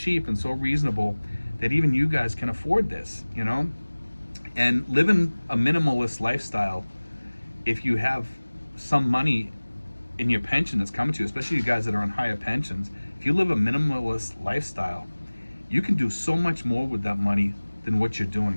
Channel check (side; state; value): both; inverted; correlation -1.00